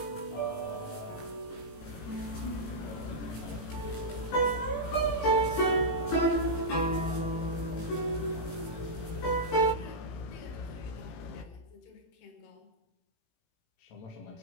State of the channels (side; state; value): right; late; 18 ms